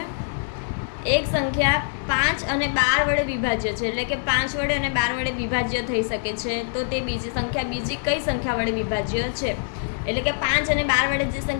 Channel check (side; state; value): right; silent; 63 dB below the other